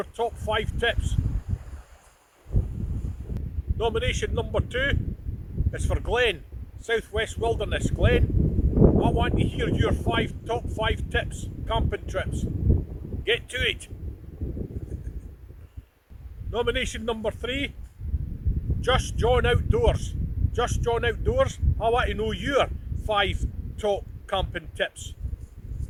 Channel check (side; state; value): both; identical; correlation 1.00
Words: top 5 tips. Nomination number 2 is for Glenn, Southwest Wilderness. Glenn, I want to hear your top 5 tips, camping trips. Get to it. Nomination number 3, Just John Outdoors. Just John Outdoors, I want to know your 5 top camping tips.